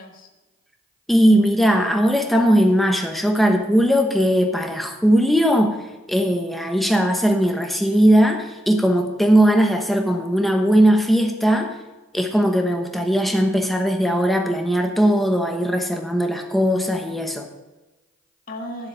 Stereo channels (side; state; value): both; normal; correlation 0.88